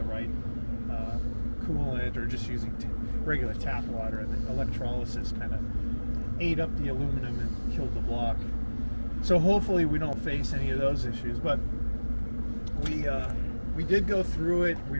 right coolant or just using regular tap water, and the electrolysis kind of ate up the aluminum and killed the block. So hopefully we don't face any of those issues, but we did go through it.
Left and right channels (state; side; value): inverted; both; correlation -1.00